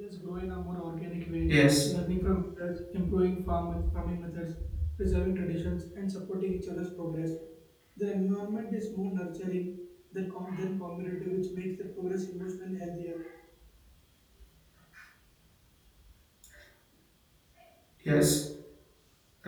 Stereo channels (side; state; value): both; identical; correlation 1.00